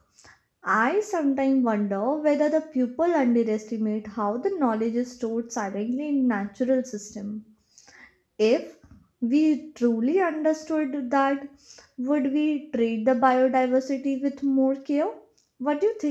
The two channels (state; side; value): identical; both; correlation 1.00